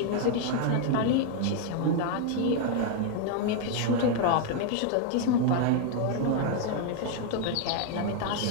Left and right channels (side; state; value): both; different; correlation 0.00